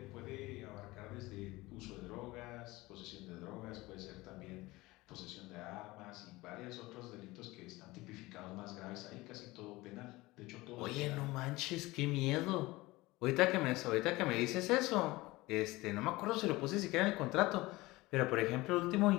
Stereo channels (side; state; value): right; quieter; 20.5 dB